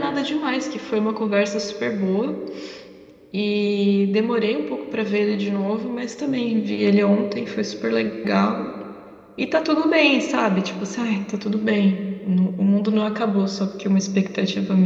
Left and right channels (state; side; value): identical; both; correlation 1.00